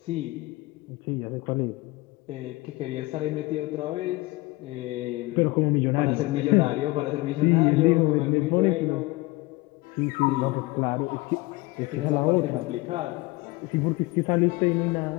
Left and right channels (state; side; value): quieter; right; 21.5 dB